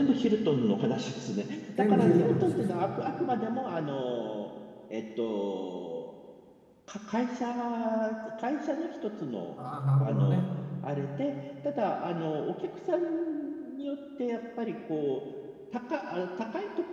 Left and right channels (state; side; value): identical; both; correlation 1.00